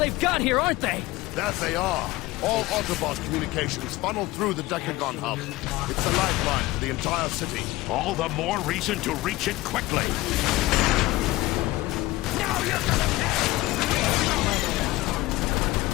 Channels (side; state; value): right; quieter; 19.0 dB